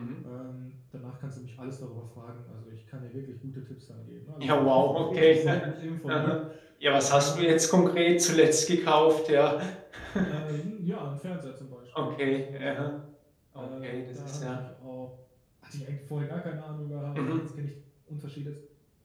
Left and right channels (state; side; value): identical; both; correlation 1.00